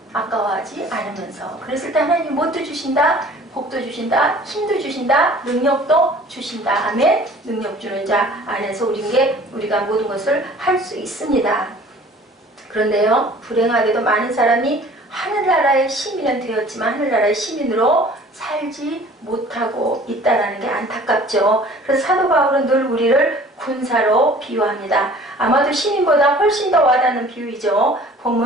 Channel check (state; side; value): normal; both; correlation 0.49